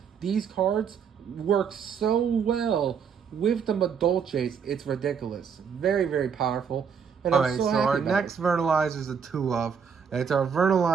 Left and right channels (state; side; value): quieter; left; 6.8 dB